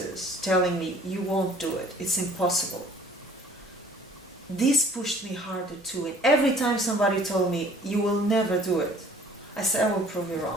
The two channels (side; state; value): both; normal; correlation 0.53